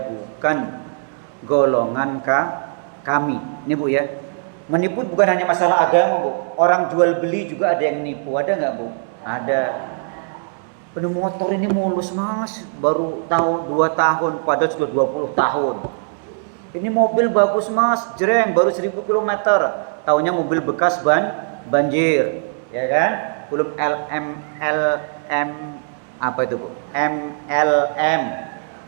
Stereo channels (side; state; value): left; silent; digital silence